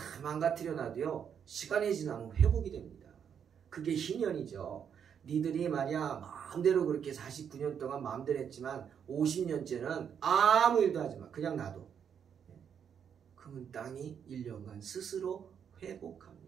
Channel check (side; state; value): left; quieter; 7.9 dB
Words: 망가뜨려 놔도요, 시간이 지나면 회복이 됩니다. 그게 희년이죠. 니들이 말이야 마음대로 그렇게 49년 동안 마음대로 했지만 50년째는 아무 일도 하지 마. 그냥 놔둬. 그러면 땅이 1년간 스스로